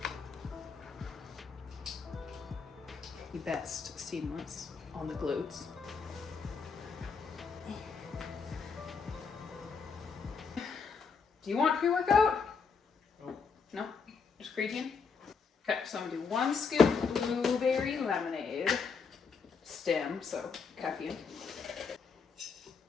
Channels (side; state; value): right; quieter; 5.5 dB